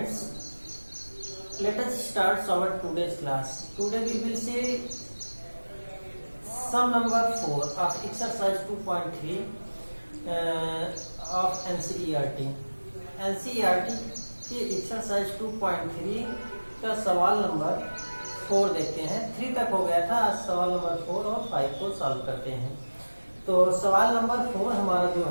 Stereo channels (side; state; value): both; inverted; correlation -1.00